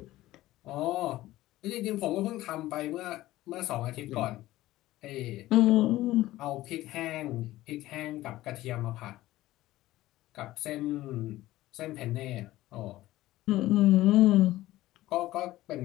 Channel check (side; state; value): right; quieter; 16.3 dB